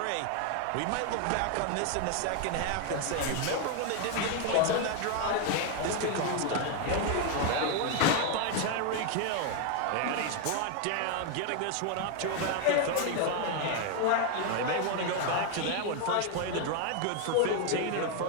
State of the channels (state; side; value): different; both; correlation 0.01